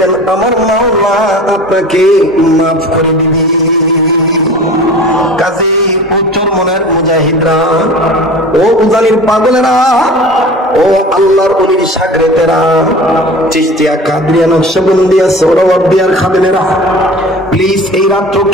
আমার মাওলা আপনাকে মাফ করে দিবে। কাজেই উচ্চর মনের মুজাহিদরা, ও উজানির পাগলেরা, ও আল্লাহর ওলির শাগরেদেরা, চিশতিয়া কাদরিয়া নকশবন্দিয়া সৌরওয়ার্দিয়ার খাদেমেরা, প্লিজ এই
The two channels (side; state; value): both; normal; correlation 0.39